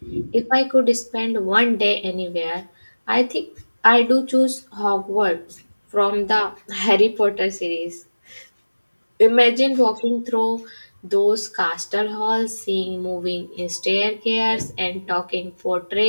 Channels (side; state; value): both; inverted; correlation -1.00